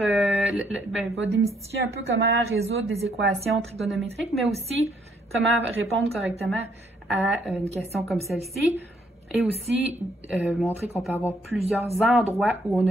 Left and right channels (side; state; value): both; normal; correlation 0.70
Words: démystifier un peu comment résoudre des équations trigonométriques, mais aussi comment répondre correctement à une question comme celle-ci, et aussi montrer qu'on peut avoir plusieurs endroits où on